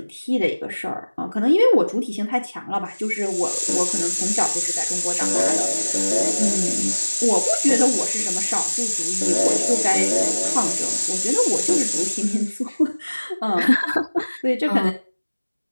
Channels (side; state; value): both; inverted; correlation -1.00